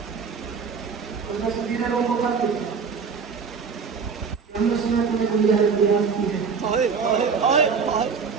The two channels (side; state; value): left; quieter; 5.7 dB